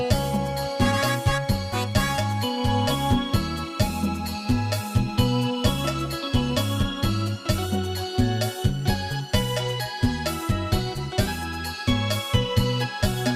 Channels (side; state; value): both; identical; correlation 1.00